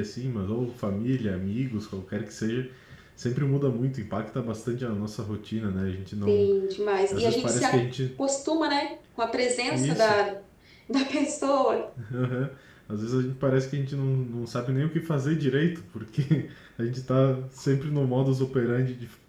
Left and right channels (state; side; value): identical; both; correlation 1.00